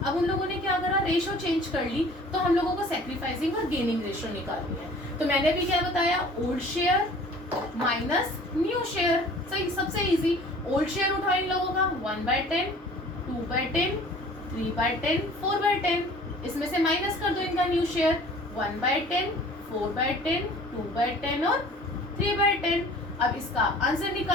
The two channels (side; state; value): both; normal; correlation 0.48